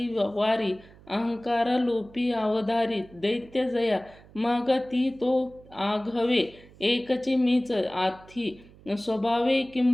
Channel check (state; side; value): noise; right; hum, 23 dB below the sound